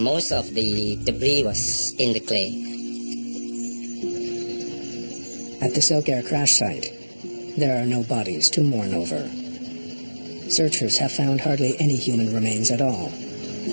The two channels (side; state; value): both; inverted; correlation -1.00